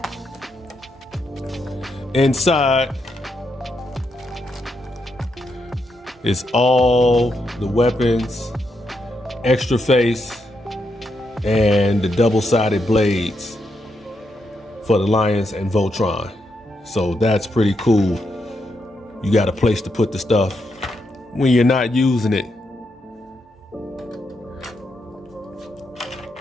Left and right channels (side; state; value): both; normal; correlation 0.82